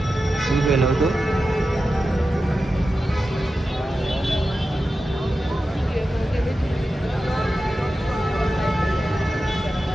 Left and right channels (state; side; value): normal; both; correlation 0.92